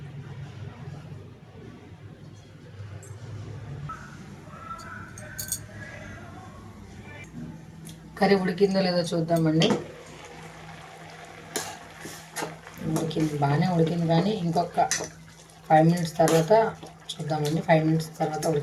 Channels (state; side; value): identical; both; correlation 1.00